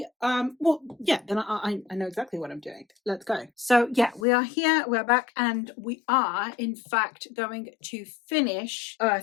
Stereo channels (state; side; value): drops out; right; at 4.2 s